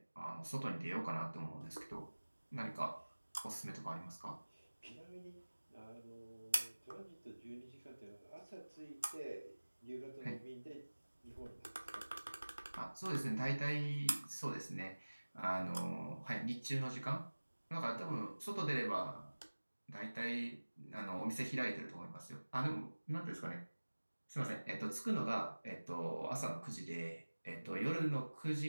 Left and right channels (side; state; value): both; inverted; correlation -1.00